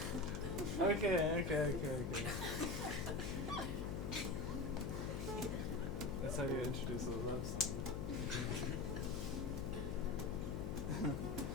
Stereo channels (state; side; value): noise; left; hum, 3 dB below the sound